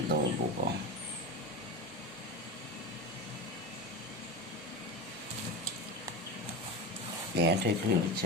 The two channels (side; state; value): both; normal; correlation 0.24